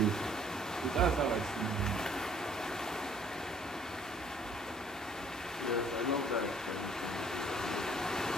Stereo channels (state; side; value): normal; both; correlation 0.59